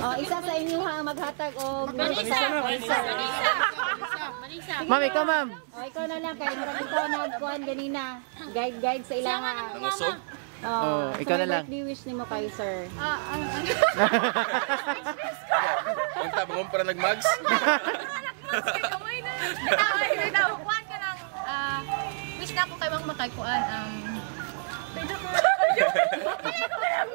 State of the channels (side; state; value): left; silent; 59 dB below the other